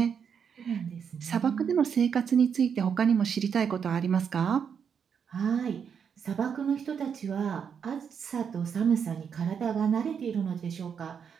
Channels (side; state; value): left; quieter; 7.1 dB